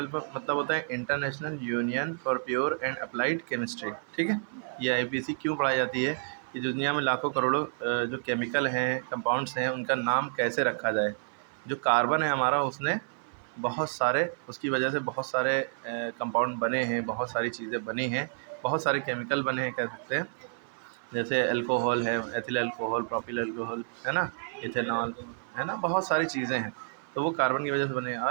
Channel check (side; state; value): left; silent; 56 dB below the other